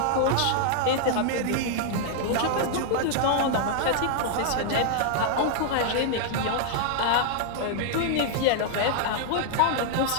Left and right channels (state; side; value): different; both; correlation -0.01